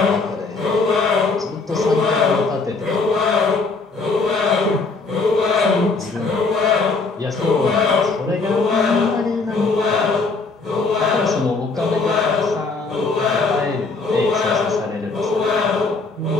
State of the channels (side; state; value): right; quieter; 4.0 dB